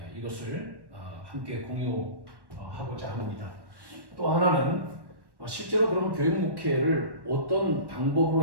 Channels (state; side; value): late; left; 1.1 ms